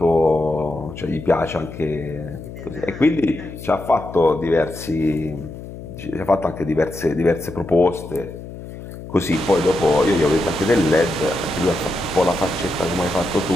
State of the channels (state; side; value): noise; left; hum, 12 dB below the sound